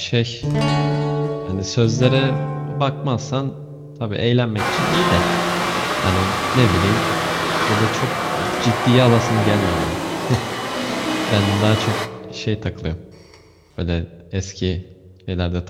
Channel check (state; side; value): identical; both; correlation 1.00